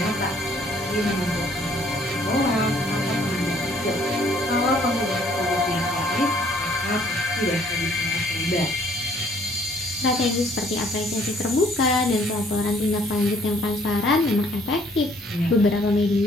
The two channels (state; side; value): normal; both; correlation 0.61